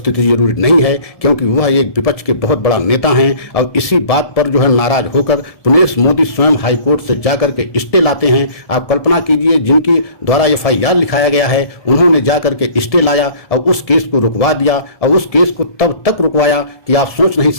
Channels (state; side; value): late; right; 1.7 ms